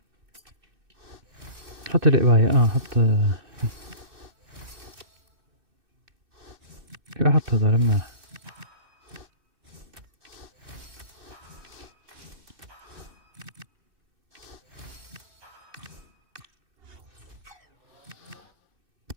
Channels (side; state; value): left; late; 2.6 ms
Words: حط الإباية حط. حط هذول مناح.